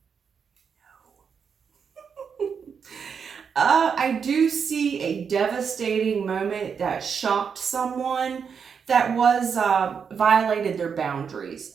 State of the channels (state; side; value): quieter; left; 6.5 dB